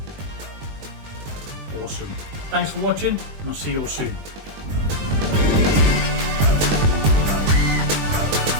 awesome. Thanks for watching, and I'll see you all soon.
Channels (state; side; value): late; left; 20 ms